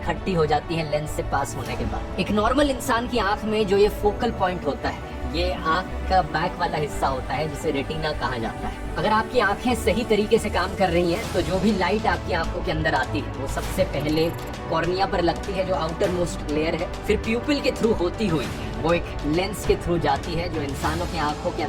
हो जाती है लेंस से पास होने के बाद। एक नॉर्मल इंसान की आंख में जो ये फोकल पॉइंट होता है, ये आंख का बैक वाला हिस्सा होता है जिसे रेटिना कहा जाता है। अगर आपकी आंखें सही तरीके से काम कर रही हैं तो जो भी लाइट आपकी आंखों के अंदर आती है वो सबसे पहले कॉर्निया पर लगती है जो आउटर मोस्ट लेयर है, फिर प्यूपिल के थ्रू होती हुई वो एक लेंस के थ्रू जाती है जो इंसानों की आंखों के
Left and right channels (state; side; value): identical; both; correlation 1.00